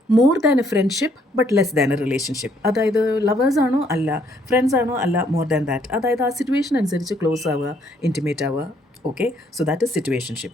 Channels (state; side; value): normal; both; correlation 0.67